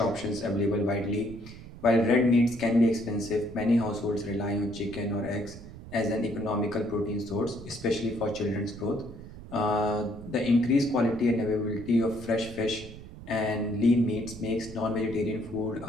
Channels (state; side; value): noise; right; rumble, 15 dB below the sound